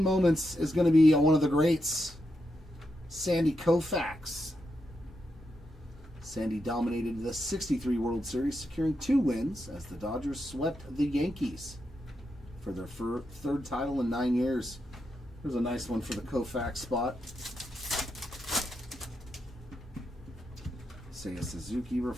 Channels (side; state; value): both; normal; correlation 0.85